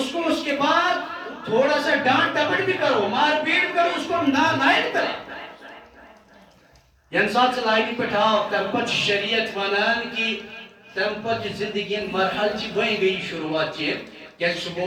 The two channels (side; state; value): both; identical; correlation 1.00